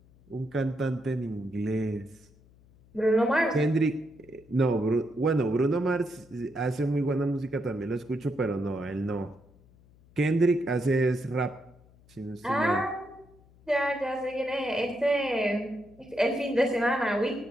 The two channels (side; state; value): left; noise; hum, 27 dB below the sound